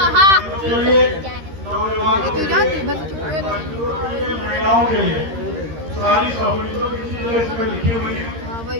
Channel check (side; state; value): left; late; 13 ms